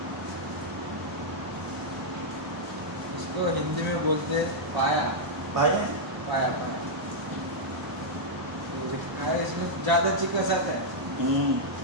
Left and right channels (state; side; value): normal; both; correlation -0.06